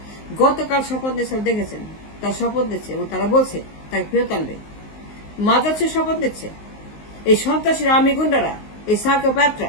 গতকাল শপথ নিয়ে সব দেখেছেন, তার শপথ দিচ্ছে এবং তারা বলছে তাকে ফেরত আনবে। মাজার সে শপথ নিচ্ছে, এই সন্ত্রাসীরা, আর্মি গুন্ডারা, এই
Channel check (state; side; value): late; right; 19 ms